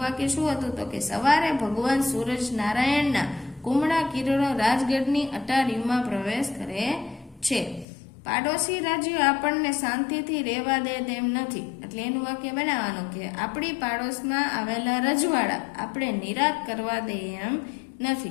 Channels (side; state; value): right; drops out; at 7.9 s